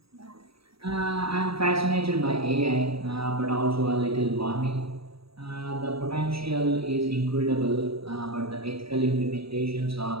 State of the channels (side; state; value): left; late; 0.77 ms